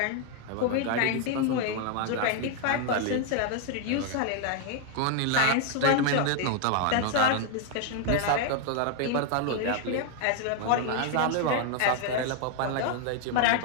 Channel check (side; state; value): both; different; correlation 0.00